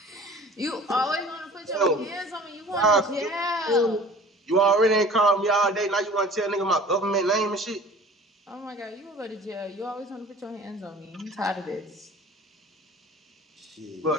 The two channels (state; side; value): normal; both; correlation 0.45